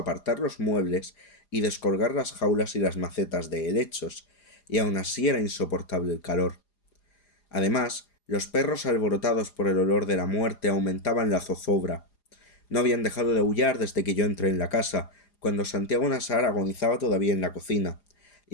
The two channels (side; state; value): right; late; 4.9 ms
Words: los muebles y descolgar las jaulas y las macetas de helechos, y aun así era insoportable el calor. Además, los perros alborotados por el olor de la muerte aumentaban la zozobra. No habían dejado de aullar desde que yo entré en la casa, cuando Santiago Nasar agonizaba todavía en la cocina,